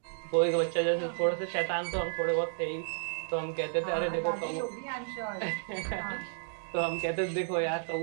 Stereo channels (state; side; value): silent; left; digital silence